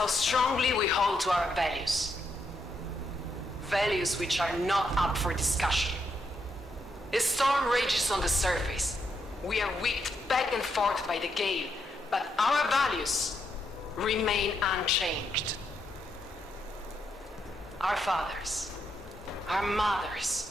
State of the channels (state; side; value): normal; both; correlation 0.79